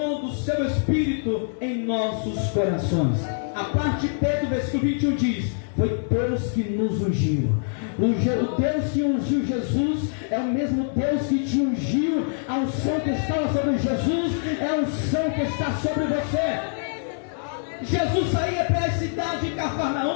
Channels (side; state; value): right; silent; 62 dB below the other